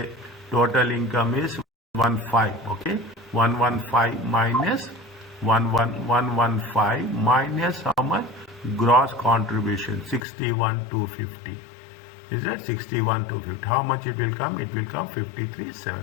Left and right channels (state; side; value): drops out; right; at 10.2 s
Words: total income? Is 115. Okay, 115 minus 115 minus how much? Gross contribution 61,250. Is that 61,250? How much it will come? It will come